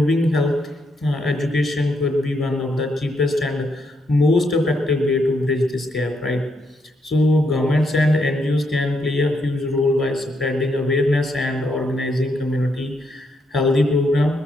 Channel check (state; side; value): normal; both; correlation 0.78